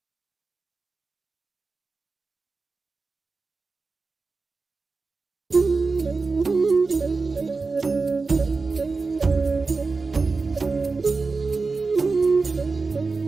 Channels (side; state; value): left; quieter; 4.1 dB